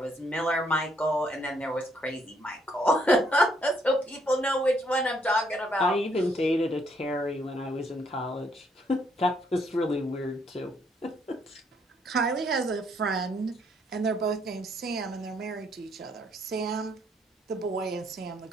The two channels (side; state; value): both; normal; correlation 0.70